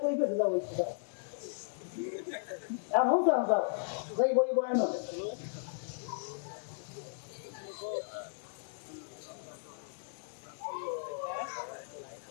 কই পেতে যাও ওই এখন যাও যাও যাই বই বয়ান হবে।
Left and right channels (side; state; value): right; silent; 54 dB below the other